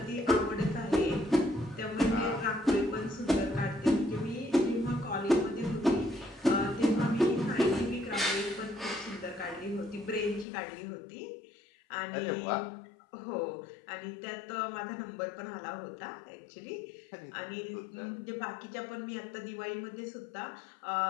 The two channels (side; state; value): right; drops out; at 10.5 s